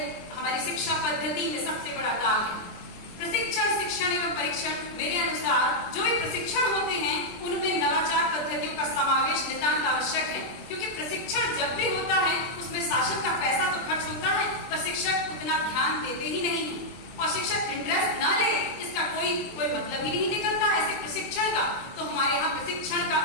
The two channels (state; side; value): late; right; 23 ms